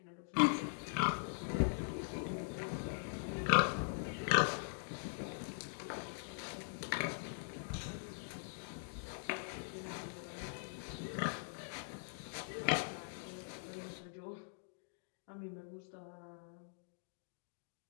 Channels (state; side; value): silent; right; digital silence